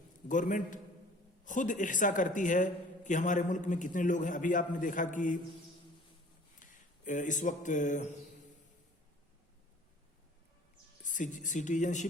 गवर्नमेंट खुद इहसा करती है कि हमारे मुल्क में कितने लोग हैं। अभी आपने देखा कि इस वक्त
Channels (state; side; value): normal; both; correlation 0.49